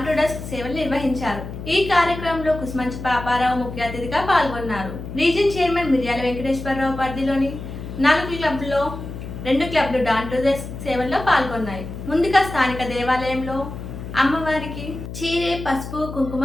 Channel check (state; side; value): noise; left; hum, 9 dB below the sound